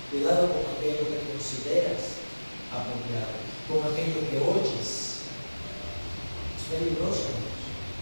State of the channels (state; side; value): inverted; both; correlation -1.00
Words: Cuidado con aquello que consideras apropiado. Con aquello que oyes. Es peligroso, amigos.